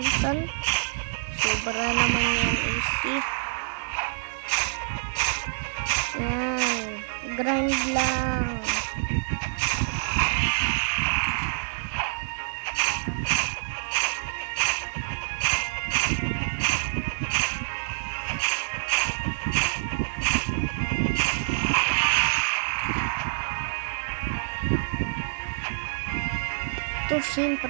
sobra naman yan easy. Yan. Grind lang. Ito,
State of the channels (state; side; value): silent; left; digital silence